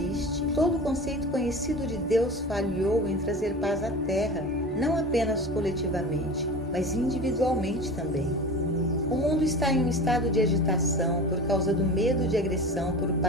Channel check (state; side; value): normal; both; correlation 0.33